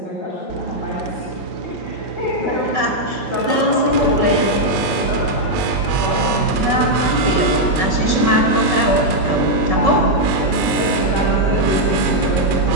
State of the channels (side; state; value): left; late; 5.3 ms